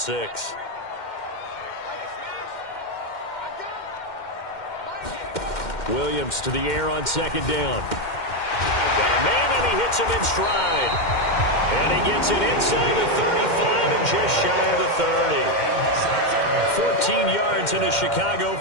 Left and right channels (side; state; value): right; late; 2.1 ms